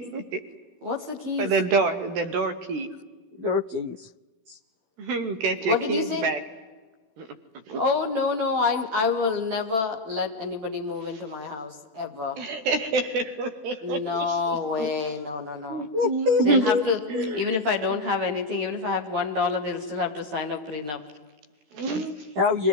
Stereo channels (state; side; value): late; left; 14 ms